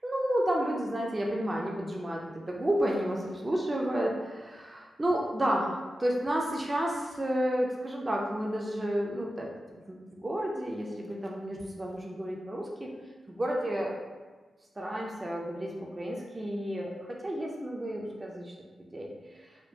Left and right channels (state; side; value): normal; both; correlation 0.93